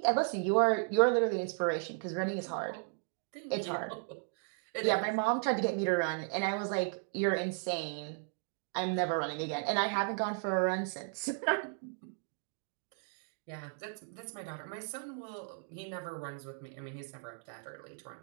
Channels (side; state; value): left; silent; 54 dB below the other